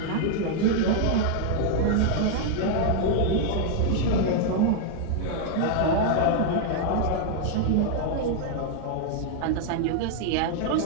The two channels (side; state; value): both; different; correlation 0.00